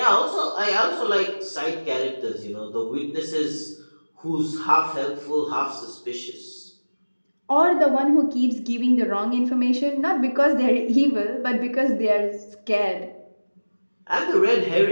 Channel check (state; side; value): inverted; both; correlation -1.00